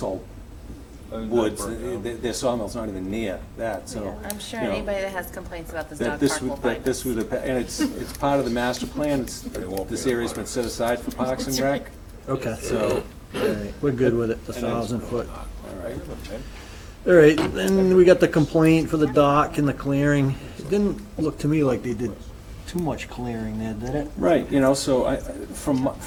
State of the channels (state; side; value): identical; both; correlation 1.00